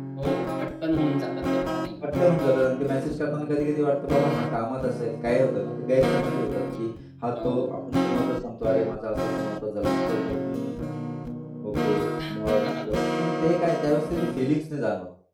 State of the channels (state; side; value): identical; both; correlation 1.00